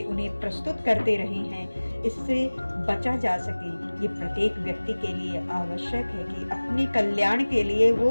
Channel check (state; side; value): inverted; both; correlation -1.00